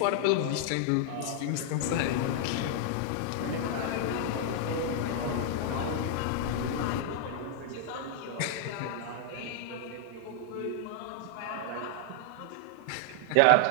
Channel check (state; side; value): different; both; correlation -0.01